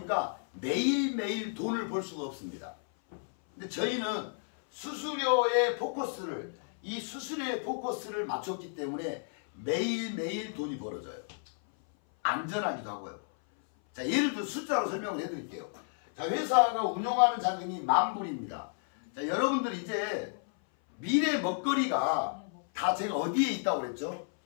매일매일 돈을 벌 수가 없습니다. 근데 저희는 수수료의 포커스를 이 수수료의 포커스를 맞췄기 때문에 매일매일 돈이 벌어져요. 안전하기도 하고요. 자, 예를 들어 숫자로 설명을 해드릴게요. 자, 회사가 운영하는 자금이 10,000불입니다. 자, 여러분들 이제 미래 먹거리가 다 제가 어디에 있다고 그랬죠?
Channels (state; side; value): silent; right; 57 dB below the other